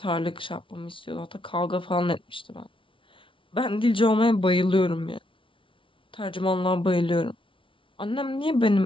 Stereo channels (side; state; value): right; late; 0.25 ms